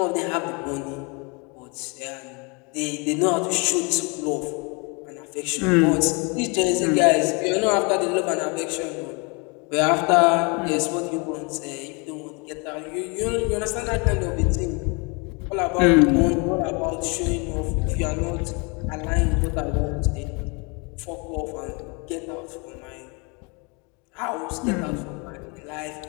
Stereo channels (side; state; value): right; quieter; 31.1 dB